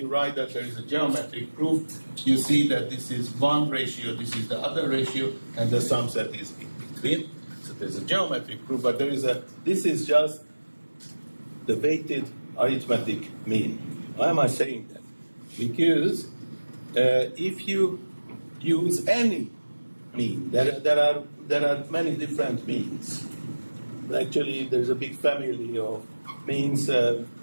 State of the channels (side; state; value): both; inverted; correlation -1.00